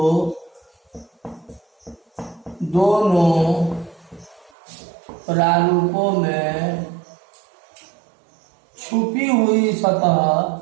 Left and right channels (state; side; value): drops out; left; at 4.5 s